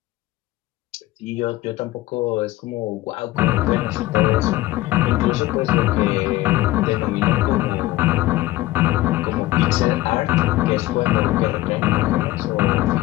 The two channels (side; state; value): right; quieter; 16.9 dB